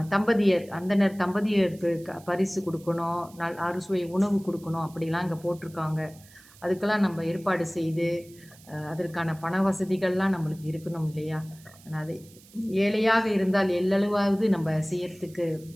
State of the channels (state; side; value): noise; right; hiss, 24 dB below the sound